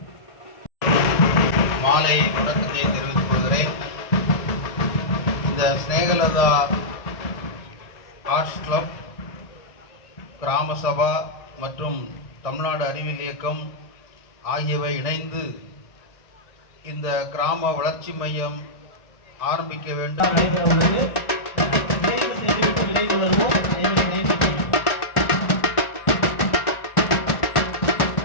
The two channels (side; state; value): right; late; 1.6 ms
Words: மாலை வணக்கத்தை தெரிவித்துக் கொள்கிறேன். இந்த ஸ்நேகலதா ஆர்ட்ஸ் கிளப், கிராம சபா மற்றும் தமிழ்நாடு அறிவியல் இயக்கம் ஆகியவை இணைந்து இந்த கிராம வளர்ச்சி மையம் ஆரம்பிக்க வேண்டும்.